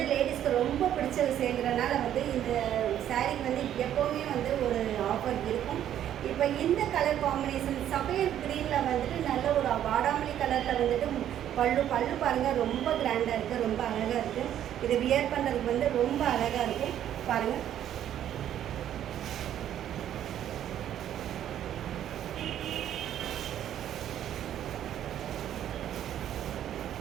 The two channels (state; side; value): quieter; left; 10.9 dB